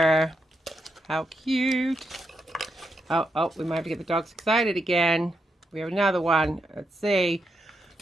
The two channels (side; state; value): both; normal; correlation 0.83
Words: How cute. Oh, we might have to get the dogs excited again. We have another one. Let's see.